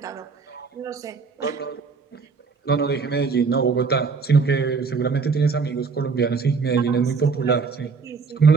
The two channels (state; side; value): quieter; left; 4.9 dB